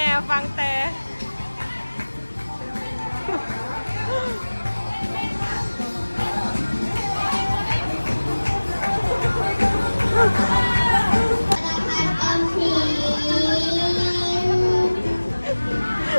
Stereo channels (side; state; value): both; inverted; correlation -1.00